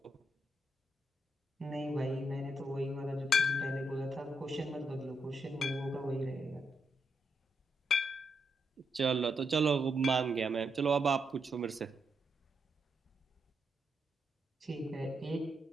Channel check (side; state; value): both; normal; correlation 0.80